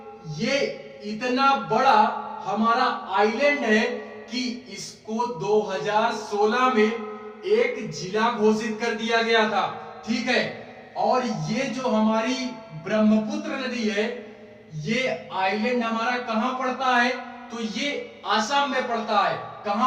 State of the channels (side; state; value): both; identical; correlation 1.00